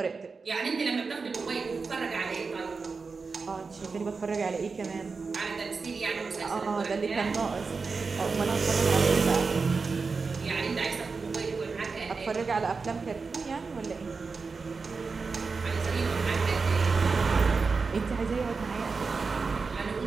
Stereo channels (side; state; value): left; quieter; 4.6 dB